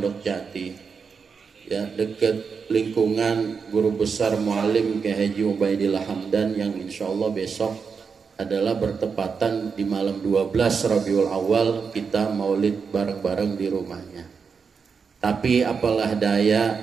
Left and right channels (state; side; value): quieter; left; 5.7 dB